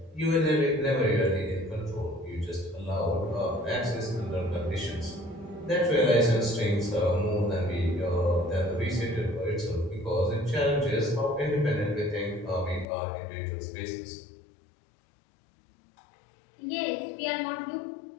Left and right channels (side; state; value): right; drops out; at 12.9 s